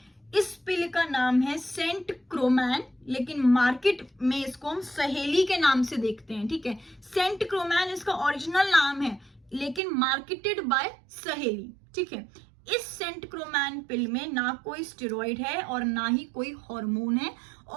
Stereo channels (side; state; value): left; drops out; at 9.8 s